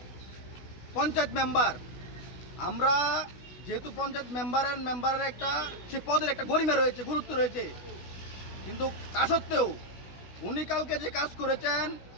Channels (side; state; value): right; late; 16 ms